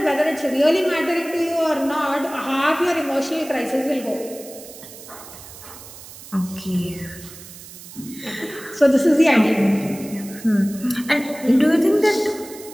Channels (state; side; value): noise; right; hiss, 16 dB below the sound